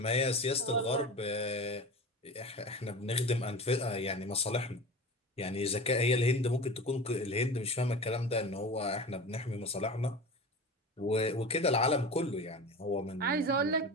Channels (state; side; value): normal; both; correlation 0.32